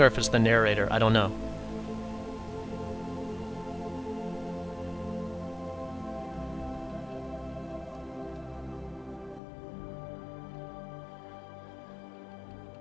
or if it's the narrator. I don't know.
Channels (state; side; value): drops out; right; at 9.4 s